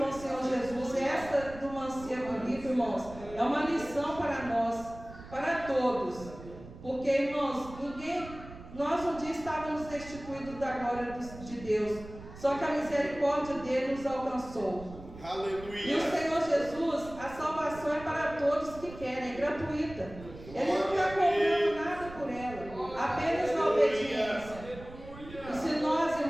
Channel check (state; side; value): noise; right; rumble, 16 dB below the sound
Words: o Senhor Jesus, esta do mancebo rico, irmãos, é uma lição para nós, para todos. Porque, irmãos, nós um dia estávamos destituídos da glória de Deus. Só que a misericórdia dele nos alcançou. Aleluia. E o Senhor Jesus, a salvação é para todos que querem, é gratuita. Ele não está cobrando nada por ela, apenas a obediência. E se nós,